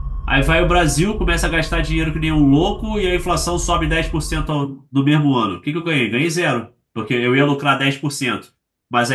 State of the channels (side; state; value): both; identical; correlation 1.00